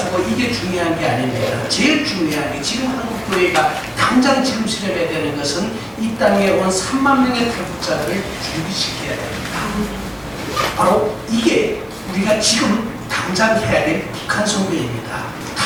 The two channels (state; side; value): identical; both; correlation 1.00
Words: 이게 중요한 게 아닙니다. 제일 중요한 게 지금 한국 교회가 당장 지금 실현해야 되는 것은 이 땅에 온 3만 명의 탈북자들을 준비시켜야 됩니다. 바로 이게 우리가 지금 당장 해야 될 북한 선교입니다.